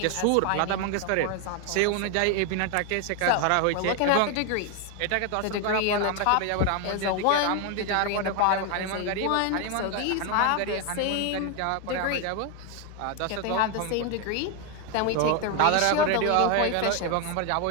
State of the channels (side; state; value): both; different; correlation 0.01